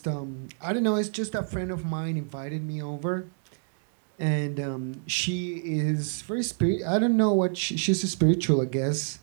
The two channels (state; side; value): silent; left; digital silence